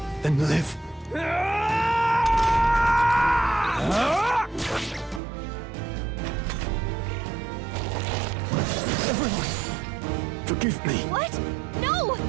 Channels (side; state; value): left; drops out; at 5.2 s